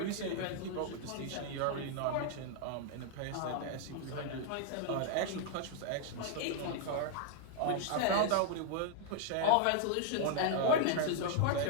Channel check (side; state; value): both; different; correlation -0.01